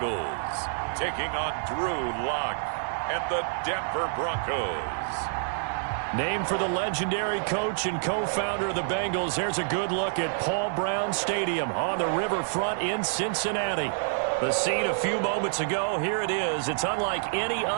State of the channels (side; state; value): left; silent; digital silence